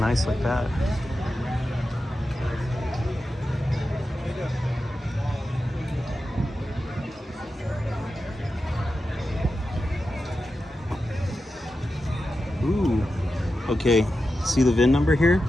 nice like that. Ooh. Okay. See the VIN number here?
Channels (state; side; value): normal; both; correlation 0.91